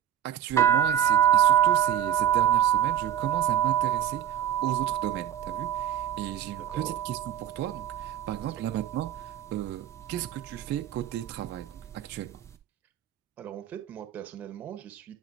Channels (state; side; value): quieter; left; 10.7 dB